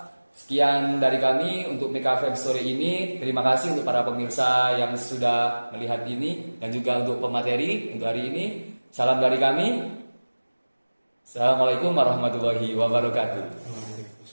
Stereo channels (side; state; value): both; inverted; correlation -1.00